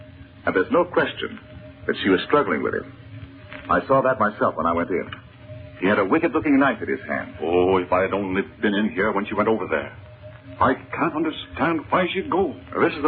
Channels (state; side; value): identical; both; correlation 1.00